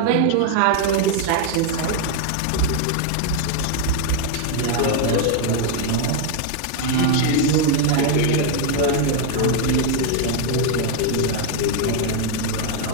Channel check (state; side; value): different; both; correlation 0.00